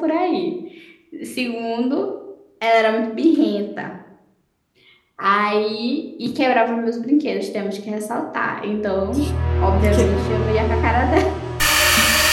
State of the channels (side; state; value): both; identical; correlation 1.00